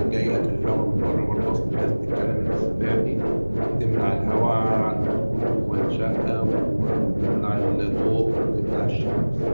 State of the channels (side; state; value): both; inverted; correlation -1.00